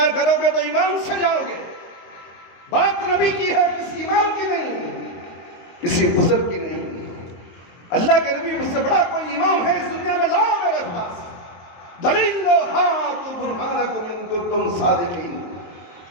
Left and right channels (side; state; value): right; late; 23 ms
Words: کرو گے تو ایمان سے جاؤ گے۔ بات نبی کی ہے، کسی امام کی نہیں، کسی بزرگ کی نہیں۔ اللہ کے نبی مجھ سے بڑا کوئی امام ہے اس دنیا میں، لاؤ میرے پاس دلیل لو، ہاتو برہانکم ان کنتم صادقین،